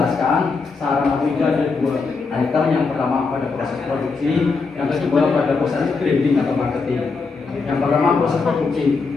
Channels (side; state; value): right; quieter; 4.4 dB